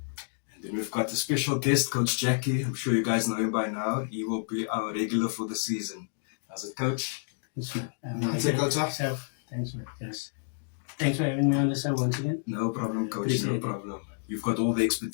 And then we've got a special guest, Coach Jackie. I'm sure you guys know him by now. He will be our regular for the season. How's it, Coach? Thanks, man. How's it, Coach? Thanks, man. Yes. Thanks for having me on the show once again. No problem, Coach. Appreciate No it. problem. You've got all the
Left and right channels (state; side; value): silent; right; digital silence